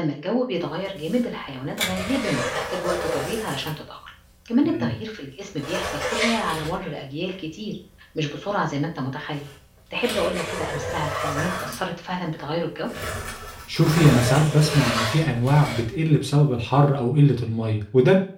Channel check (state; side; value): identical; both; correlation 1.00